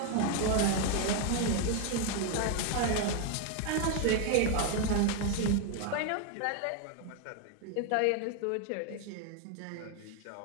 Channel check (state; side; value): different; both; correlation 0.01